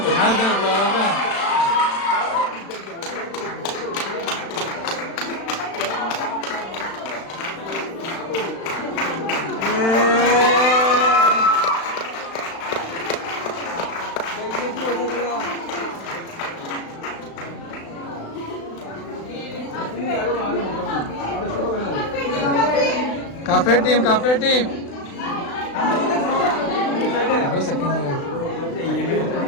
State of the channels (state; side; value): late; right; 36 ms